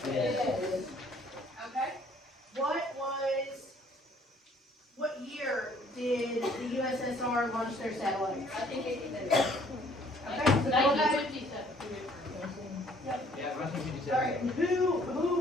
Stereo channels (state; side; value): normal; both; correlation 0.60